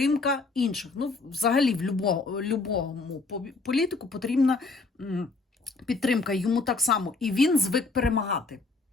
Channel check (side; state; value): right; quieter; 3.8 dB